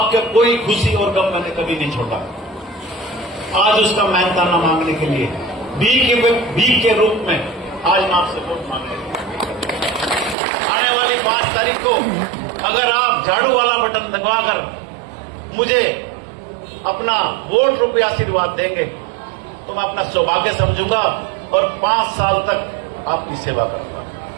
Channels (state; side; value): drops out; left; at 10.4 s